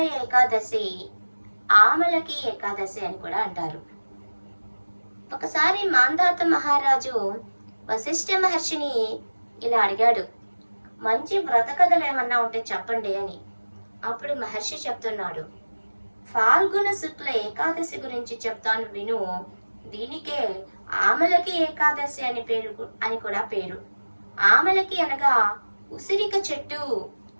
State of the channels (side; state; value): both; inverted; correlation -1.00